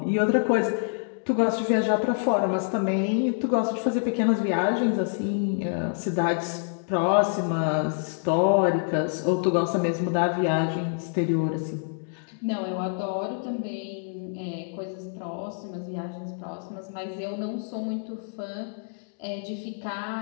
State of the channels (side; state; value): right; silent; digital silence